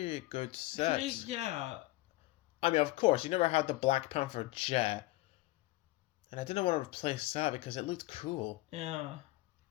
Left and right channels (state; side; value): quieter; right; 19.3 dB